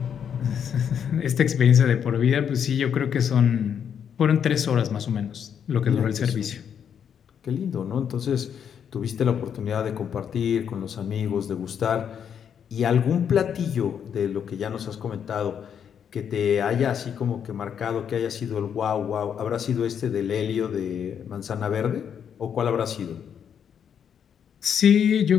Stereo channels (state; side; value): quieter; right; 8.1 dB